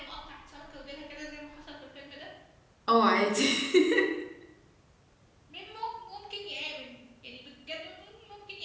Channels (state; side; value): identical; both; correlation 1.00